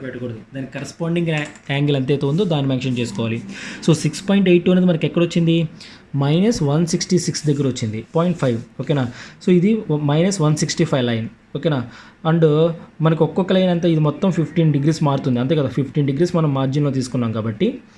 పెట్టకూడదు. దానికి కరస్పాండింగ్ యాంగిల్ ఎంతైతే ఉందో దాన్ని మెన్షన్ చేసుకోవాలి. సో 6.82 అనేది మనకి ఎక్కడ వచ్చింది -166 దగ్గర వచ్చింది 0.5. ఓకేనా. సో ఇది -165 లైన్. ఓకేనా. అండ్ మనకు ఒక్కొక్క లైన్ అంతా ఇది మొత్తం 15 డిగ్రీస్ మారుతుంది అంతే కదా. 15 డిగ్రీస్ మనం మార్జిన్లో తీసుకున్నాం కాబట్టి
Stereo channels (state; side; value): identical; both; correlation 1.00